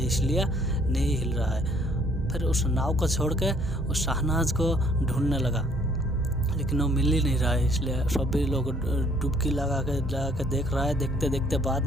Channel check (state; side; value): normal; both; correlation 0.62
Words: इसलिए नहीं हिल रहा है। फिर उस नाव को छोड़ के उस शहनाज को ढूंढने लगा, लेकिन वो मिल ही नहीं रहा है, इसलिए सभी लोग डुबकी लगा के देख रहा है। देखते देखते बाद